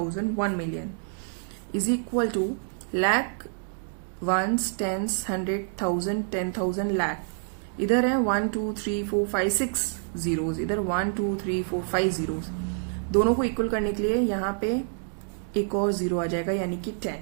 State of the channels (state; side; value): silent; left; digital silence